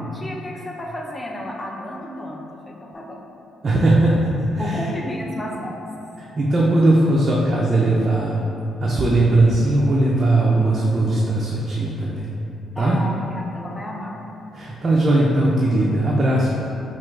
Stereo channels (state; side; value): normal; both; correlation 0.83